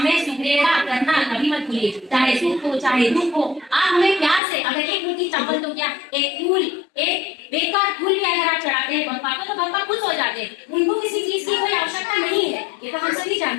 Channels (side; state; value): right; drops out; at 4.4 s